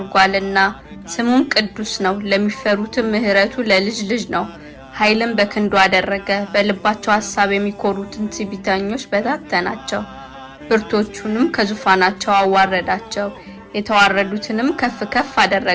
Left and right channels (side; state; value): both; identical; correlation 1.00